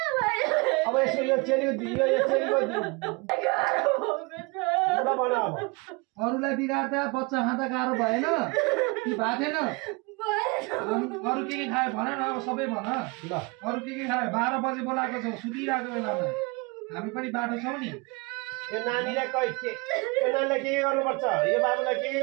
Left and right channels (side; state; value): left; quieter; 28.0 dB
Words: अब यसो यो चेलीको ल भन अब अरूलाई बिगार्दा बच्चा खाँदा गाह्रो भएन कि भएको थिएन? अरू के खायो भन न? अब सबै भन। ल अरू के खायो? 12 बजे बोलाएको छौ सुतिरहेको बेलामा। हामी पनि बाटो छौँ नि। यो नानीलाई यो नानीलाई के गर्नुपर्छ? यो बाबुलाई के